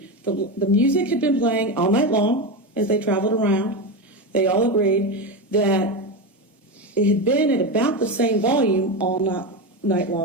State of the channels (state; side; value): normal; both; correlation 0.16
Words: the music had been playing all night long as they traveled around. They all agreed that it had been at about the same volume all night